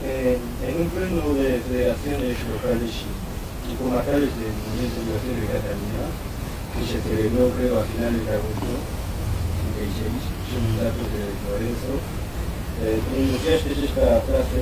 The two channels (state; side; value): identical; both; correlation 1.00